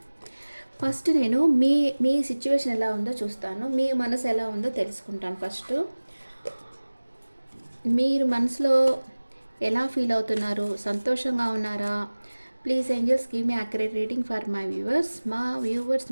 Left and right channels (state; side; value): inverted; both; correlation -1.00